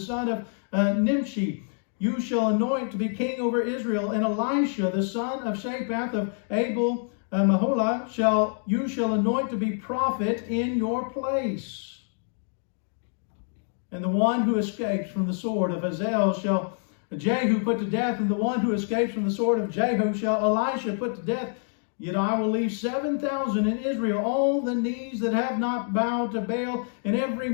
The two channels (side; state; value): right; silent; 60 dB below the other